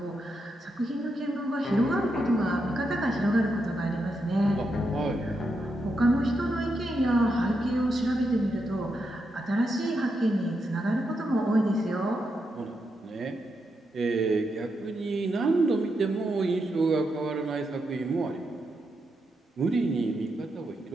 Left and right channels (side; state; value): both; normal; correlation 0.84